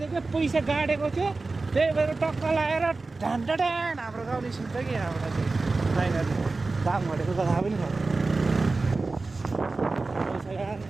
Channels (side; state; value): left; quieter; 3.6 dB